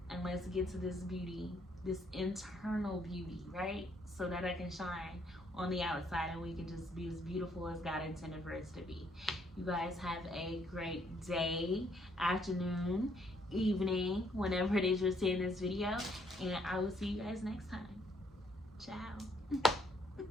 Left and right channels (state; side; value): normal; both; correlation 0.69